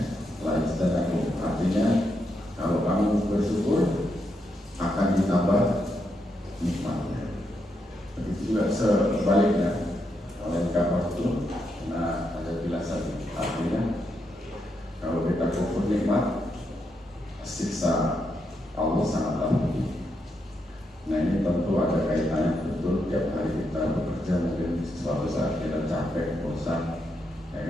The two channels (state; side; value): normal; both; correlation 0.81